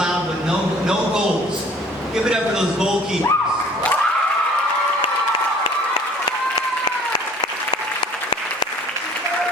with no goals. Give it up for those goalkeepers.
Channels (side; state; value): both; normal; correlation 0.52